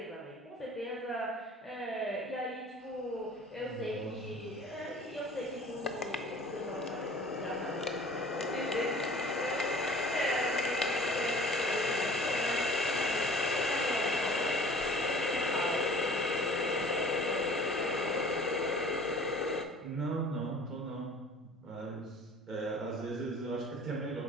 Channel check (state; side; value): normal; both; correlation 0.47